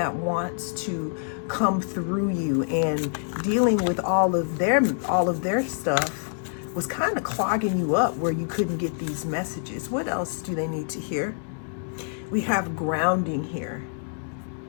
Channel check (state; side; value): silent; right; digital silence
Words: wants to come through you, and dealing with all of their stuff was kind of clogging you up where you couldn't get these messages. What else do they need to hear? We have grounding here.